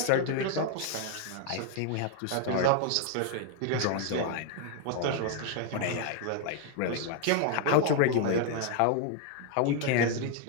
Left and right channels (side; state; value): both; different; correlation 0.00